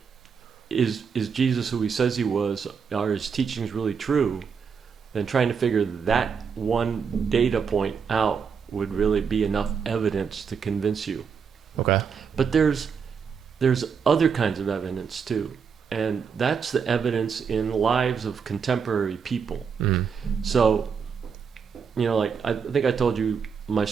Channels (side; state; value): left; quieter; 6.3 dB